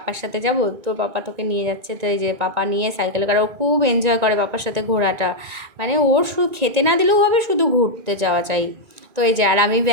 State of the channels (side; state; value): left; late; 1.9 ms